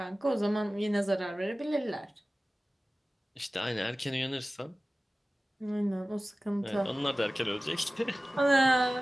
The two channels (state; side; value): normal; both; correlation 0.97